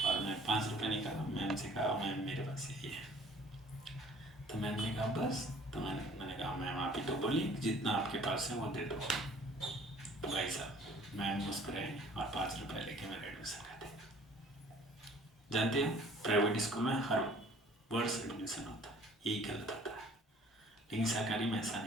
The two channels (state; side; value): normal; both; correlation 0.53